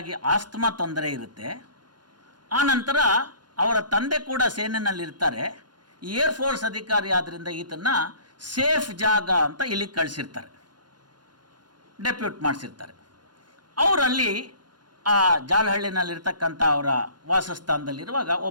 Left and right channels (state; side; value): late; left; 0.71 ms